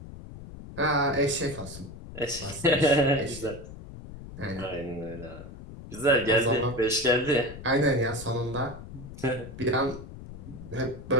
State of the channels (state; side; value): noise; left; rumble, 13 dB below the sound